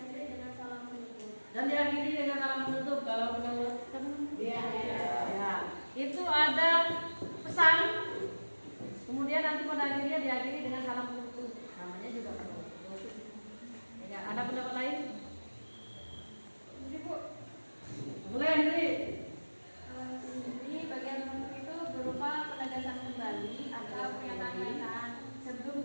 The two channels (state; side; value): inverted; both; correlation -1.00